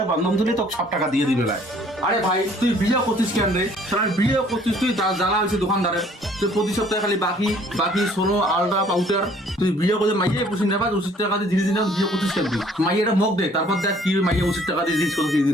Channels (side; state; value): both; normal; correlation 0.58